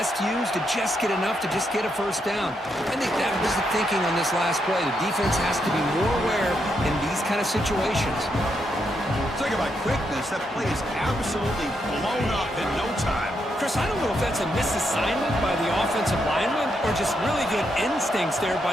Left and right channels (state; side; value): normal; both; correlation 0.80